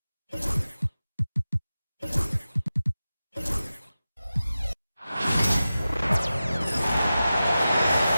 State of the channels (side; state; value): both; inverted; correlation -0.94